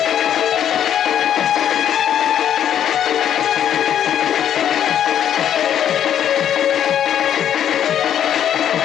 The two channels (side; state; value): right; quieter; 9.8 dB